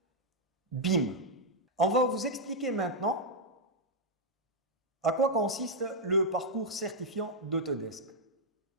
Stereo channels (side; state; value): both; normal; correlation -0.03